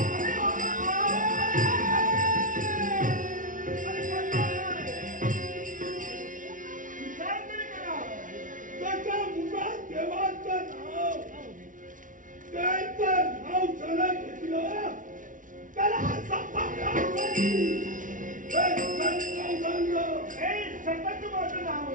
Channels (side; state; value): left; late; 0.38 ms